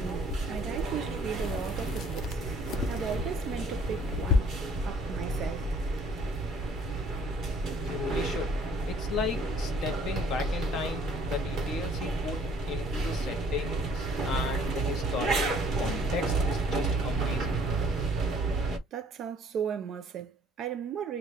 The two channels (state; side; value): normal; both; correlation 0.58